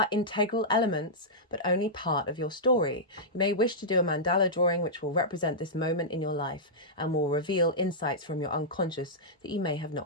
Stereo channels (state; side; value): normal; both; correlation -0.11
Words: integral elements, but only part of your story. You may wish to do a mandala drawing which will represent this moment in your life and will reveal insights from your unconscious that you may have